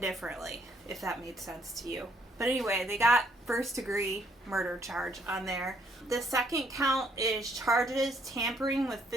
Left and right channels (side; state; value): both; normal; correlation 0.68